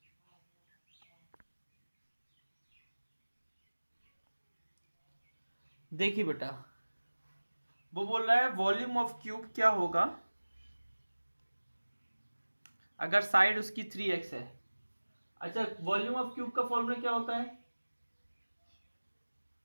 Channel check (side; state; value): both; inverted; correlation -1.00